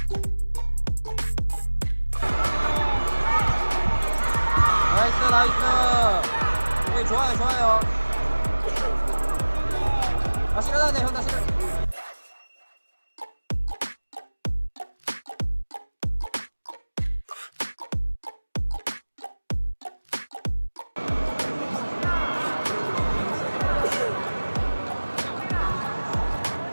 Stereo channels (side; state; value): both; inverted; correlation -1.00